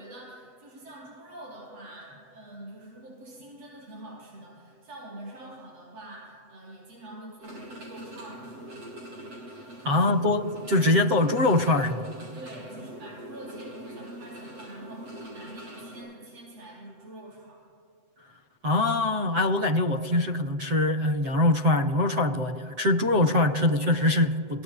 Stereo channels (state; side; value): late; left; 7.9 ms